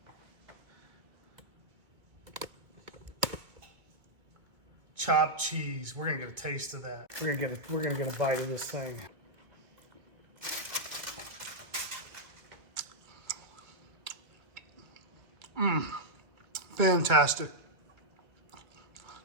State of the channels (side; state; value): left; late; 1.9 ms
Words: Chopped cheese. We're gonna get a taste of that. We're gonna get a bite of this thing. Fantastic.